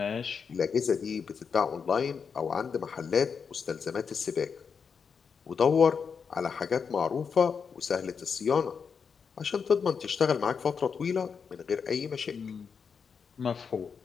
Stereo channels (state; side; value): quieter; right; 6.1 dB